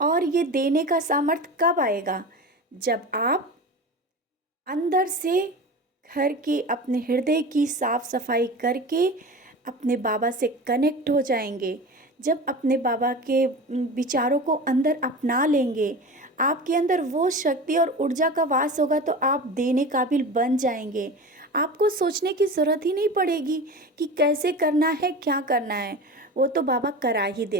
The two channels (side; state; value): both; normal; correlation 0.31